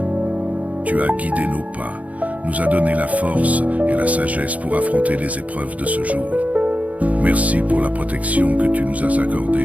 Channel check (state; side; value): late; left; 0.070 ms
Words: Tu as guidé nos pas, nous as donné la force et la sagesse pour affronter les épreuves de ce jour. Merci pour la protection que tu nous as